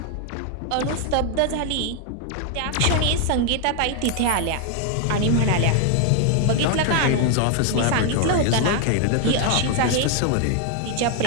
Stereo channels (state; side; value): different; both; correlation 0.00